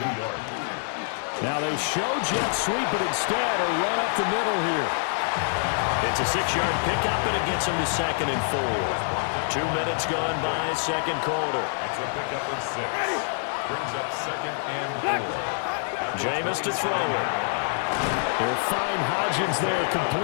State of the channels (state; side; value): silent; right; 61 dB below the other